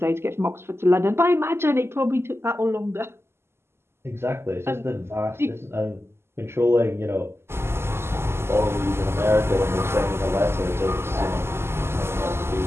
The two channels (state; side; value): late; left; 0.12 ms